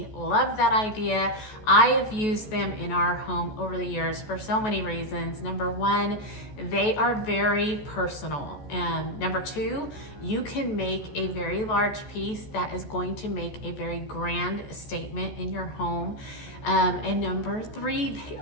love that idea. I have used them in our home over the years for so many reasons. Number one, they are very personal. And number two, you can make a very large piece that is going to make a very grand statement in your home. And number three, they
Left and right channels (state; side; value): late; right; 14 ms